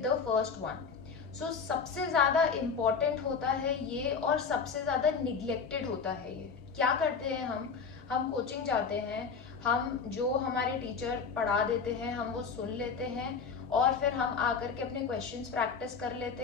the first one. So सबसे ज़्यादा important होता है ये और सबसे ज़्यादा neglected होता है ये। क्या करते हैं हम कोचिंग जाते हैं, हम जो हमारे टीचर पढ़ा देते हैं हम वो सुन लेते हैं और फिर हम आकर के अपने क्वेश्चंस प्रैक्टिस कर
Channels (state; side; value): quieter; right; 5.6 dB